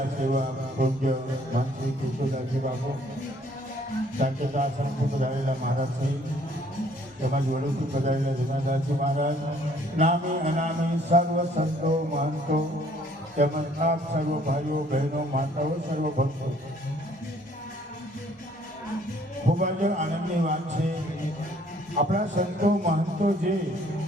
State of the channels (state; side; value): normal; both; correlation 0.61